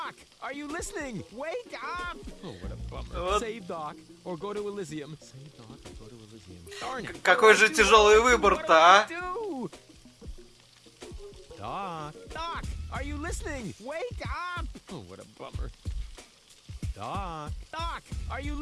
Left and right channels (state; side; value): identical; both; correlation 1.00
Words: are you listening? Wake up! Oh, what a bummer. Вот. Save Doc or go to Elysium. Save Doc or go to Elysium. Darn it. Какой же тяжелый выбор-то, а? Do? Doc, are you listening? Wake up! Oh, what a bummer. Doc, are you